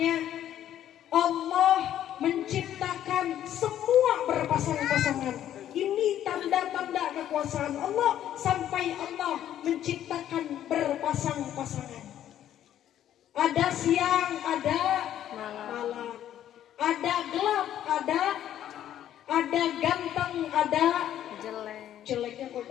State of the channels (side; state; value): right; quieter; 11.3 dB